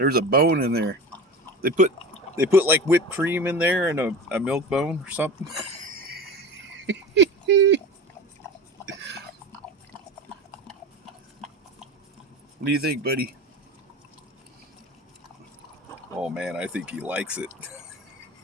a bone in there. They put like whipped cream in there and a milk bone or something. What do you think, buddy? Oh man, I think he likes it.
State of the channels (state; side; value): normal; both; correlation 0.31